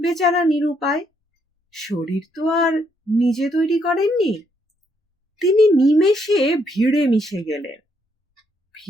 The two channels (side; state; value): both; normal; correlation 0.73